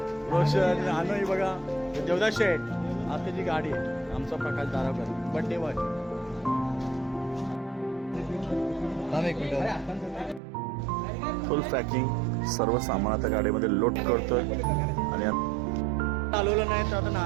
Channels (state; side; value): drops out; left; at 10.4 s